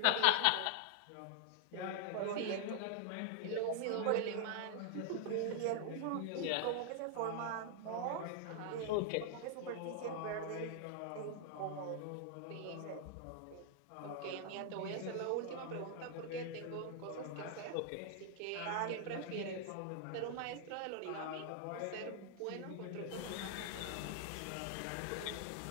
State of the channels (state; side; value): different; both; correlation 0.00